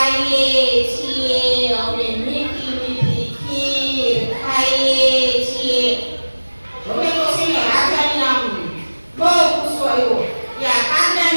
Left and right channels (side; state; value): both; inverted; correlation -1.00